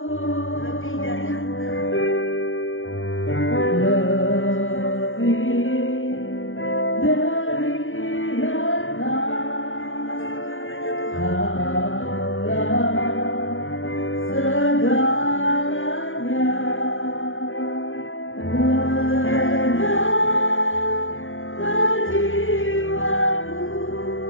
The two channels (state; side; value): late; right; 0.58 ms